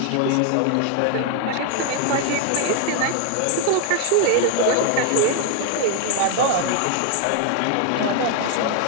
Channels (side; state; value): both; different; correlation 0.00